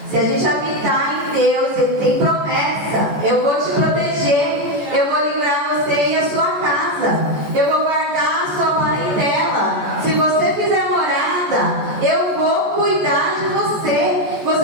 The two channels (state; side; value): late; left; 14 ms